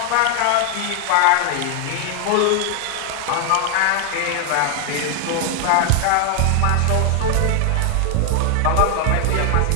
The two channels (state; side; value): different; both; correlation 0.00